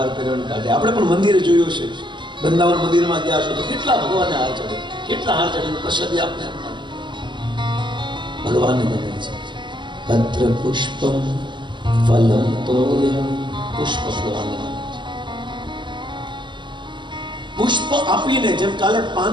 કરીને કાઢે. આપણે પણ મંદિરે જોયું છે, વૃંદાવન મંદિરમાં ગયા છો તો કેટલા ભગવાનને હાર ચડે, કેટલા હાર ચડે પ્રસાદી આપને ભગવાનને ગમે છે. પત્ર પુષ્પમ ફલમ તોયમ, પુષ્પ ભગવાનને પુષ્પ આપીને, જેમ કાલે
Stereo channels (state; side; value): late; left; 0.23 ms